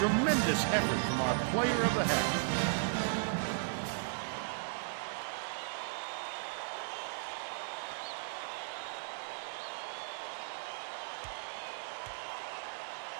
effort from our player of the half.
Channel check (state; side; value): silent; left; digital silence